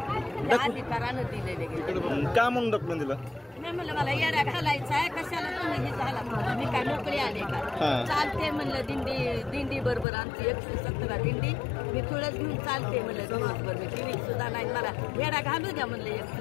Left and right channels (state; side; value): drops out; right; at 10.1 s